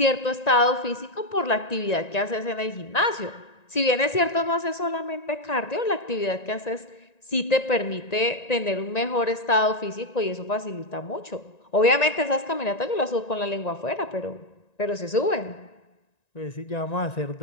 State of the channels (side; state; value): right; late; 1.9 ms